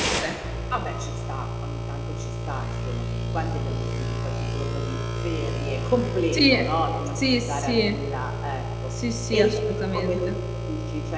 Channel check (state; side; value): identical; both; correlation 1.00